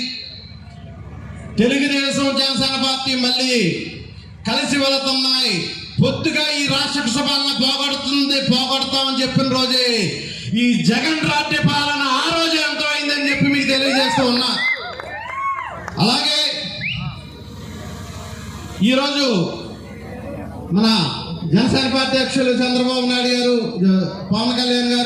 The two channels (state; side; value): identical; both; correlation 1.00